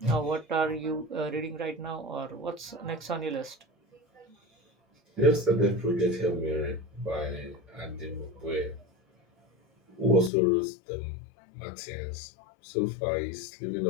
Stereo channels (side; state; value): right; drops out; at 10.3 s